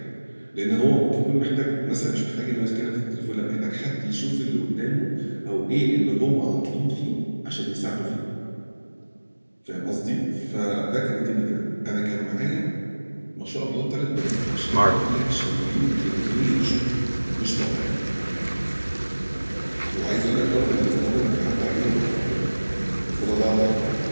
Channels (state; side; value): inverted; both; correlation -1.00